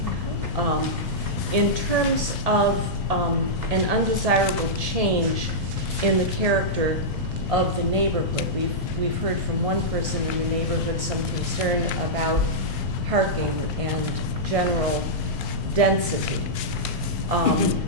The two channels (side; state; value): both; normal; correlation -0.11